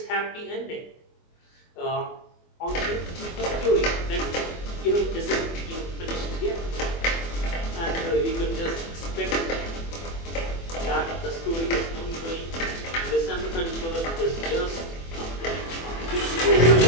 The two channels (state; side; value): late; right; 24 ms